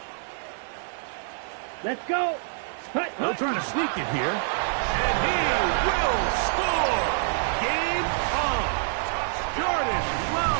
Let's go. They'll try to sneak it here. And he will score. Game on. Jordan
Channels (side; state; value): left; silent; digital silence